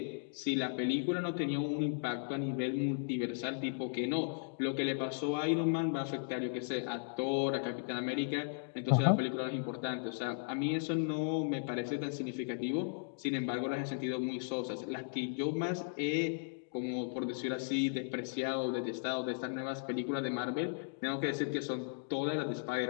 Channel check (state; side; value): silent; right; digital silence